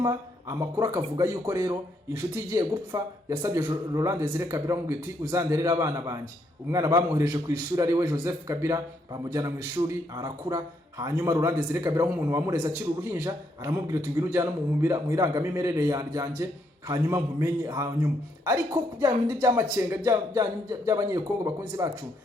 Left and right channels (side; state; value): both; normal; correlation 0.75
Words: amakuru akavuga yuko rero inshuti igiye gupfa yasabye Laurent Desire Kabila ngo iti uzanderera abana banjye. Umwana bamwohereje ku ishuri ari we Joseph Kabila, bamujyana mu ishuri arakura. Hanyuma Laurent Desire Kabila nk'umuntu wamureza akiri uruhinja aramubwira ati ngwino ujyana mu irangamimerere yanjye, hanyuma nkumenye. Hanyuma ariko bya bindi by'amakenga by'abanyekongo bakunzi bacu